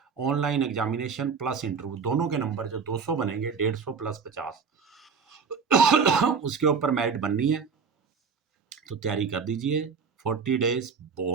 ऑनलाइन एग्जामिनेशन प्लस इंटरव्यू, दोनों के नंबर जो 200 बनेंगे, 150 प्लस 50 उसके ऊपर मेरिट बननी है। तो तैयारी कर दीजिए, 40 डेज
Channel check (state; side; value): quieter; left; 5.7 dB